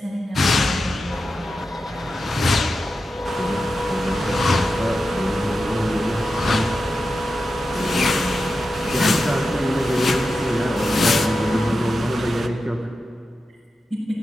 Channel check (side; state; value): both; normal; correlation 0.91